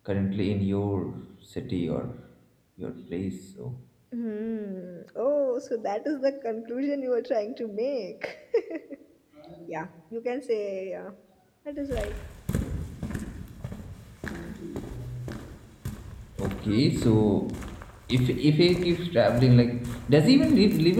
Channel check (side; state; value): both; identical; correlation 1.00